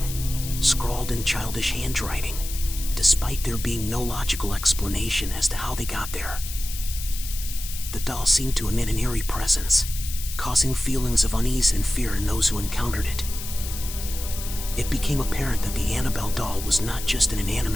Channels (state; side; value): noise; left; hiss, 9 dB below the sound